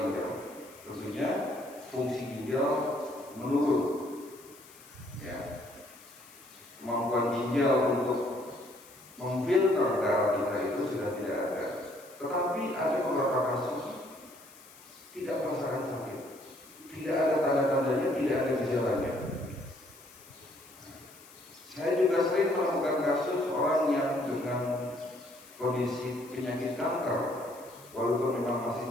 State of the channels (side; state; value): left; noise; hiss, 22 dB below the sound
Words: ginjal? Tentunya fungsi ginjal menurun. Ya. Kemampuan ginjal untuk memfilter darah kita itu sudah tidak ada. Tetapi ada beberapa kasus tidak merasakan sakit, tidak ada tanda-tandanya, tidak ada gejalanya. Saya juga sering menemukan kasus orang yang dengan kondisi penyakit kanker, walaupun memang masih